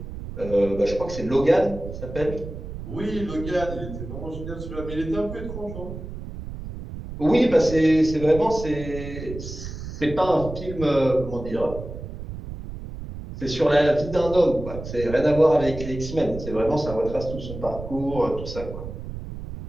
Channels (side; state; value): right; noise; rumble, 10 dB below the sound